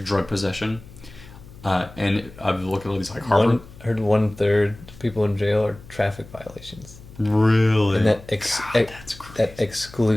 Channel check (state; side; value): noise; left; hum, 19 dB below the sound